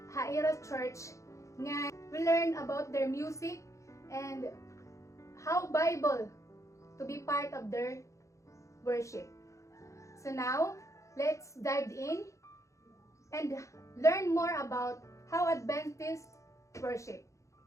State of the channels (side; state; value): right; late; 0.15 ms